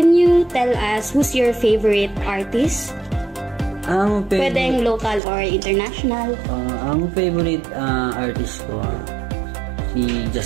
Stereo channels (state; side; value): drops out; left; at 5.2 s